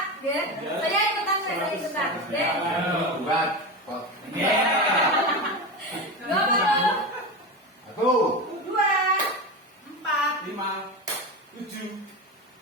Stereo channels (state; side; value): normal; both; correlation 0.21